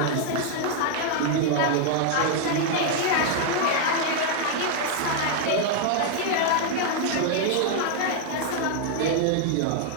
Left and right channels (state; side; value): different; both; correlation 0.00